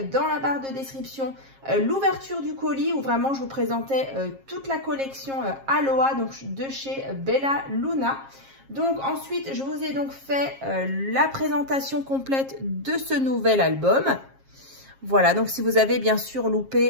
dans la barre de description l'ouverture du colis où vraiment je vous présentais toute la collection Aloha donc de chez Bella Luna. Donc ensuite, je vous ai donc fait la présentation complète de ce nouvel album. Voilà, donc si vous avez bien sûr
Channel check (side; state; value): left; late; 7.4 ms